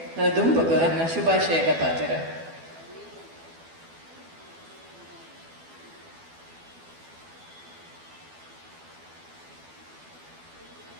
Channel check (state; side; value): late; left; 12 ms